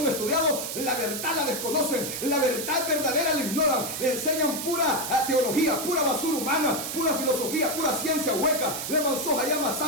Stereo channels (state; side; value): noise; right; hiss, 5 dB below the sound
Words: estudiados, la verdad la desconocen, la verdad verdadera la ignoran, le enseñan pura teología, pura basura humana, pura filosofía, pura ciencia hueca, le Mansoja llama